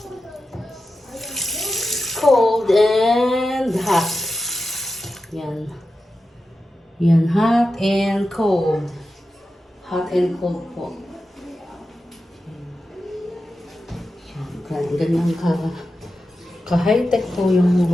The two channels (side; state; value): both; normal; correlation 0.91